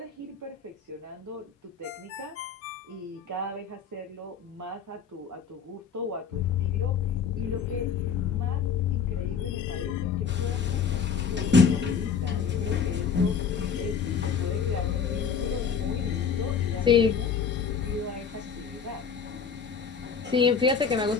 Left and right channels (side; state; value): right; quieter; 6.5 dB